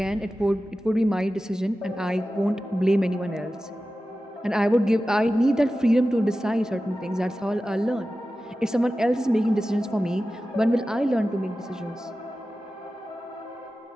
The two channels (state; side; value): normal; both; correlation 0.94